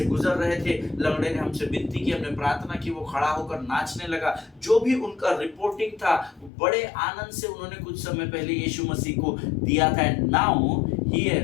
गुजर रहे थे, लंगड़े ने हमसे विनती की, हमने प्रार्थना की, वो खड़ा होकर नाचने लगा। जो भी उनका रिपोर्टिंग था, बड़े आनंद से उन्होंने कुछ समय पहले यीशु मसीह को दिया था। And now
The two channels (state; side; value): drops out; right; at 6.5 s